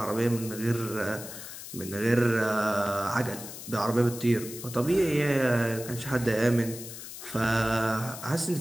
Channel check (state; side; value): noise; left; hiss, 11 dB below the sound